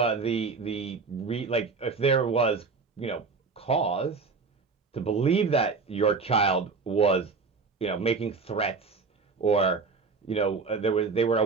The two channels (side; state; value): left; quieter; 4.6 dB